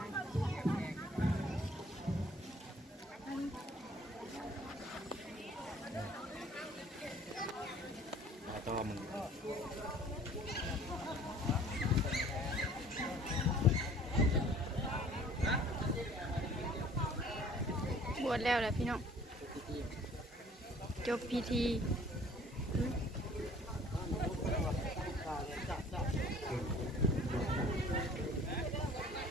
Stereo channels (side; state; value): both; normal; correlation 0.52